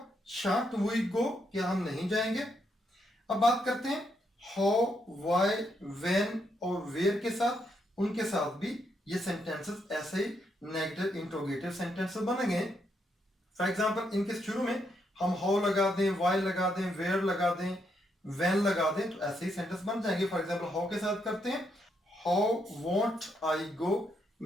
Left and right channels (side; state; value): both; normal; correlation 0.78